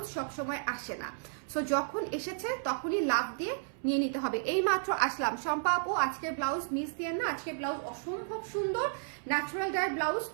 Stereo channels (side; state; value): left; silent; 56 dB below the other